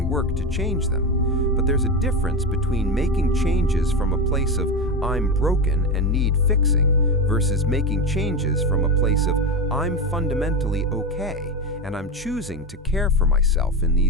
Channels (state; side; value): normal; both; correlation 0.16